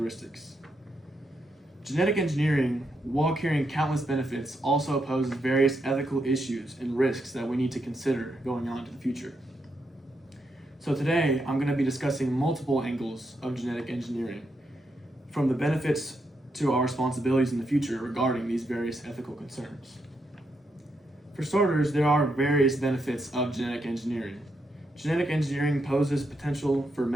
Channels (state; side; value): normal; both; correlation 0.81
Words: Genetic engineering, while carrying countless benefits, also poses various ethical issues and risks that we need to consider going on into the future. So today, I'm going to be discussing multiple angles of genetic engineering, from the benefits to our responsibilities in the future regarding these various ethical concerns. For starters, there are various benefits of genetic engineering. Genetic engineering poses potential for